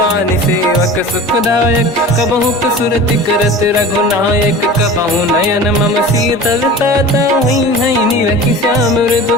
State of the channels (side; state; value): both; normal; correlation 0.37